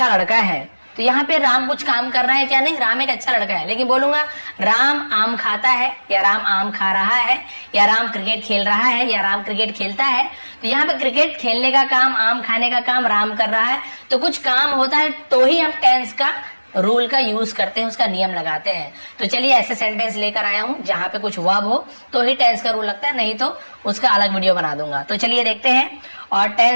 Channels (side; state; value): both; inverted; correlation -1.00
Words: लड़का है, तो यहाँ पे राम कुछ काम कर रहा है क्या? नहीं, राम एक अच्छा लड़का है। लेकिन बोलूंगा राम आम खाता है, या राम आम खा रहा है, या राम क्रिकेट खेल रहा है, या राम क्रिकेट खेलता है, तो यहाँ पे क्रिकेट खेलने का काम, आम खाने का काम राम कर रहा है, तो कुछ काम होता है तो ही हम टेंस का रूल का यूज करते हैं, उसका नियम लगाते हैं। तो चलिए ऐसे सेंटेंस लेकर आया हूं जहां पे कुछ वर्ब हो तो ही टेंस का रूल लगता है, नहीं तो उसका अलग वीडियो बना दूंगा। तो चलिए देखते हैं। और